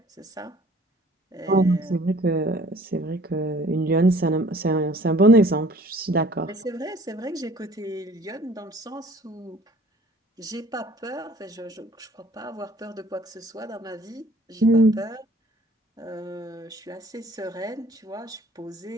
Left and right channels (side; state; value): both; normal; correlation 0.54